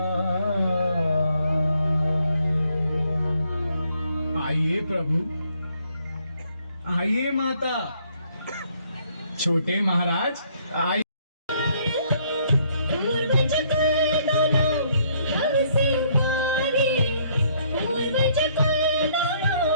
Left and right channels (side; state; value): both; inverted; correlation -0.67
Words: आइए प्रभु, आइए माता। छोटे महाराज आइए।